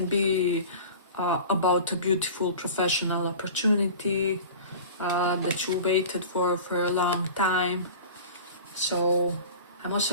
be about a beautiful professional opportunity that you waited for a long time. So I'm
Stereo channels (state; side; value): inverted; both; correlation -0.38